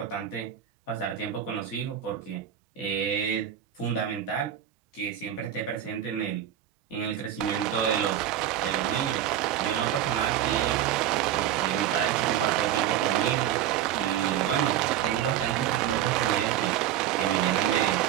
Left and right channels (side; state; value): left; quieter; 11.0 dB